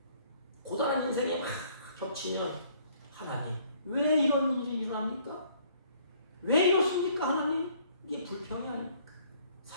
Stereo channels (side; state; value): both; inverted; correlation -0.60